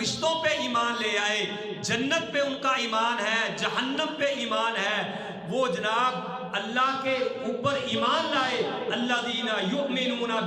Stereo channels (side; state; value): both; identical; correlation 1.00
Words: پہ ایمان لے آئے، جنت پہ ان کا ایمان ہے، جہنم پہ ایمان ہے، وہ جناب اللہ کے اوپر ایمان لائے، الذین یؤمنون